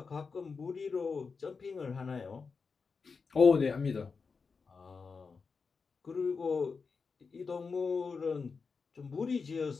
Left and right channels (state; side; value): quieter; right; 5.0 dB